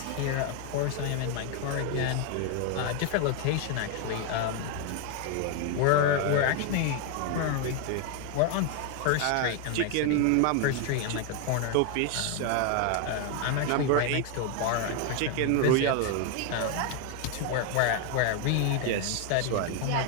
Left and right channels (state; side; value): different; both; correlation 0.01